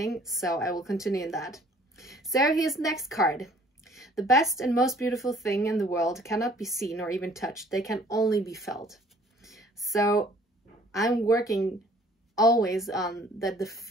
So I will continue in that. So here's the next card. The best and most beautiful thing in the world cannot be seen or even touched. They can only be felt. So I'm working always on the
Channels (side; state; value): both; normal; correlation 0.56